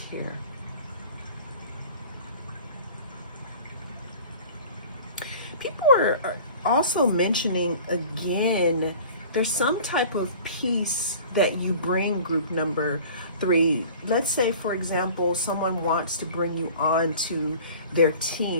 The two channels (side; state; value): both; inverted; correlation -0.43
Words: here. People are also mentioning, again, there's some type of peace that you bring, group number 3. Let's say, for example, someone wants to bring you on to their